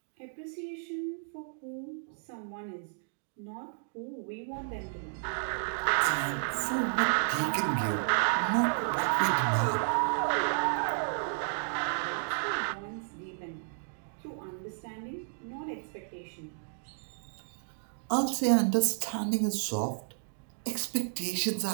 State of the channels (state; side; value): silent; left; digital silence